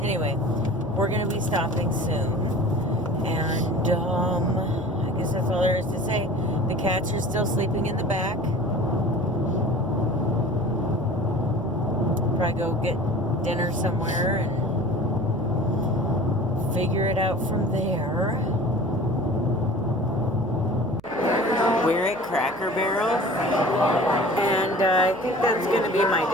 anyway, we're gonna be stopping soon, and I guess that's all there is to say. The cats are still sleeping in the back. Probably go get dinner somewhere and figure it out from there. We're at Cracker Barrel, and I think that's going to be my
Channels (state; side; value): noise; right; hum, 26 dB below the sound